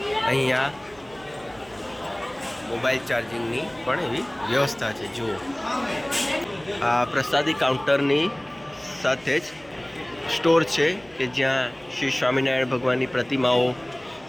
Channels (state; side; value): noise; right; hum, 26 dB below the sound